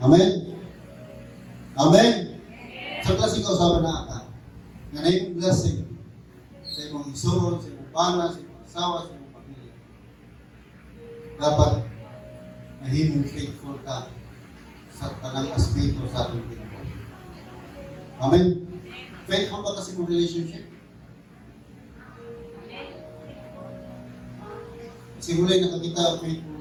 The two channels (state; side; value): identical; both; correlation 1.00